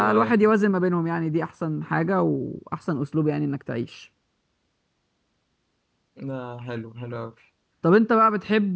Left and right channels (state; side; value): identical; both; correlation 1.00